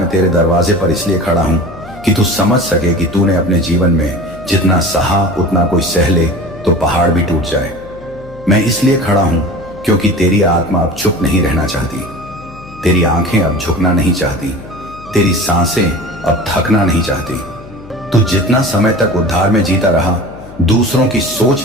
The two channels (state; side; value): noise; left; hum, 19 dB below the sound